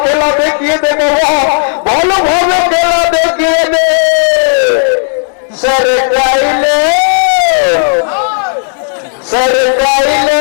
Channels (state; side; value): silent; right; digital silence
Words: খেলা দেখিয়ে দে বাবা, ভালোভাবে খেলা দেখিয়ে দে। सरकाइलो सरकाइलो